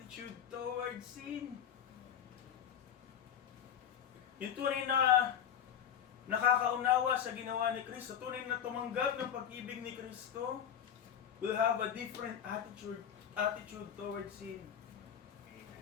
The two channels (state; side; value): quieter; right; 9.0 dB